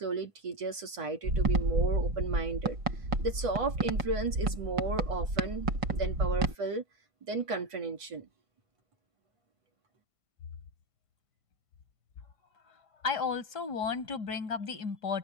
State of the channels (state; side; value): late; left; 1.5 ms